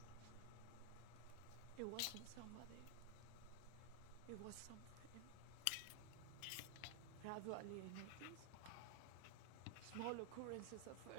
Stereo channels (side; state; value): both; different; correlation 0.00